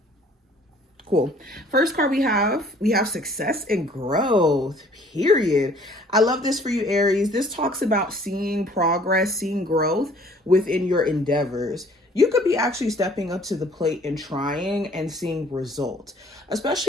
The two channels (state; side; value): normal; both; correlation 0.56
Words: Cool. First card we have success and growth, period. I love this for you, Aries. This talks about seeing progress, seeing growth within your endeavors. You could be actually stepping up to the plate and trying and seeing results,